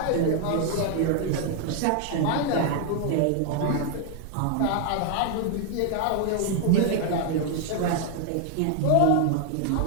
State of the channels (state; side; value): different; both; correlation 0.00